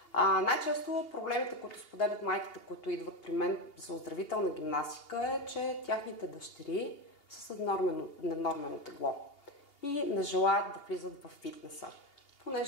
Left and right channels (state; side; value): late; right; 2.8 ms